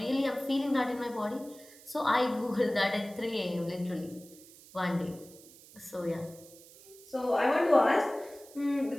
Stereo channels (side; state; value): right; noise; hiss, 21 dB below the sound